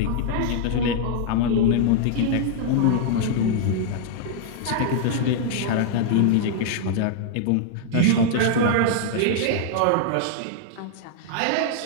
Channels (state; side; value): different; both; correlation -0.01